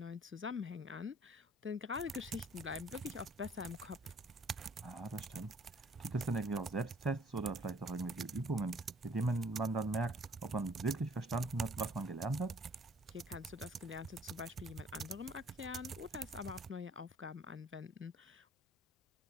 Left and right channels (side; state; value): both; normal; correlation 0.58